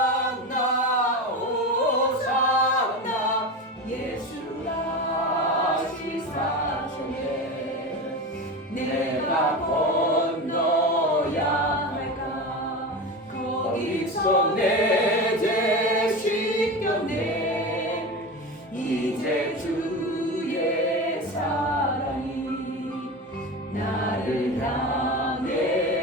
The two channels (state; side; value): normal; both; correlation 0.25